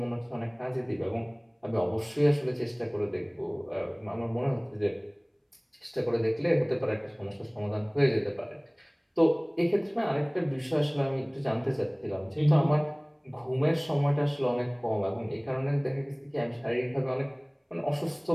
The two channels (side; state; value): both; identical; correlation 1.00